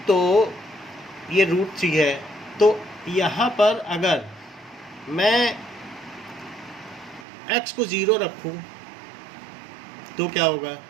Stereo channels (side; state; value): left; drops out; at 7.2 s